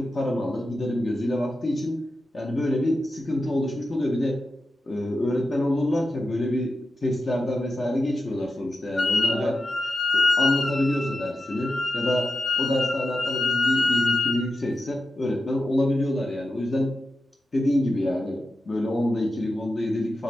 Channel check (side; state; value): both; normal; correlation 0.90